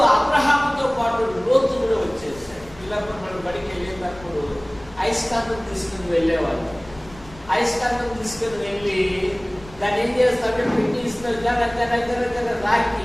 అబ్రహాముతో పాటు లోతు కూడా వచ్చేసాడు. పిల్లలు మనం బడికి వెళ్ళేటప్పుడు ఐస్కాంతం తీసుకుని వెళ్ళేవాళ్ళు. అయస్కాంతం తీసుకుని వెళ్ళి దాన్ని ఏం చేస్తామంటే పిన్నీసులు దగ్గర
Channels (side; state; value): left; noise; rumble, 20 dB below the sound